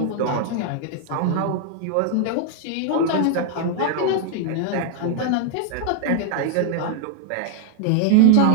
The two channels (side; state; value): both; different; correlation 0.00